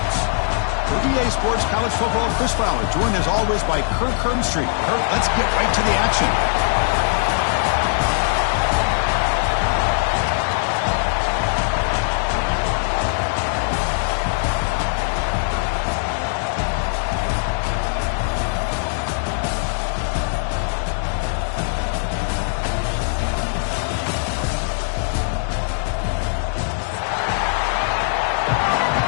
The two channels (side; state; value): right; silent; digital silence